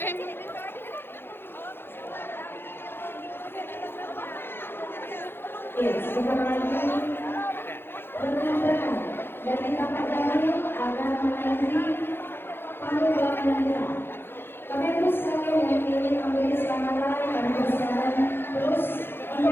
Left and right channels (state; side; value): late; right; 0.10 ms